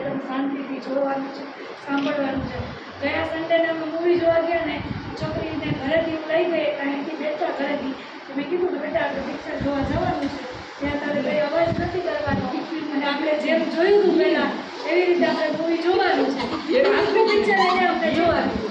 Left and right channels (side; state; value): both; identical; correlation 1.00